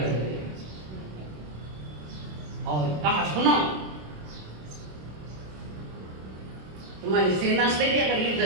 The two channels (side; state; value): left; late; 27 ms